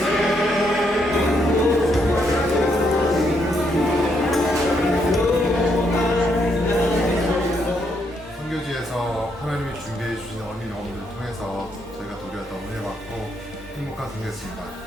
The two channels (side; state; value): both; normal; correlation 0.76